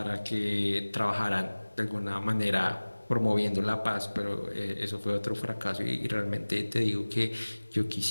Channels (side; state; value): both; inverted; correlation -1.00